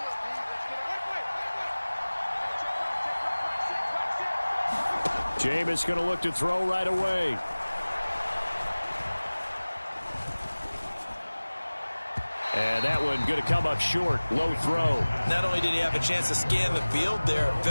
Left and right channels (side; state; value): both; inverted; correlation -1.00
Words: Jameis going to look to throw right away. And that one going to come up short. Low throw. Not only did he have a chance to scan the field there, it